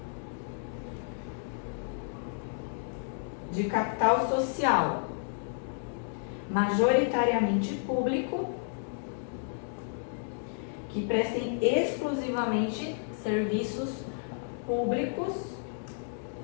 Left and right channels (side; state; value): right; silent; digital silence